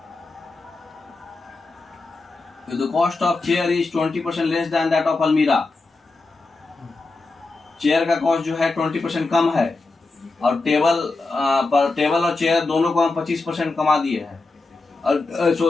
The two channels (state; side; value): quieter; right; 3.5 dB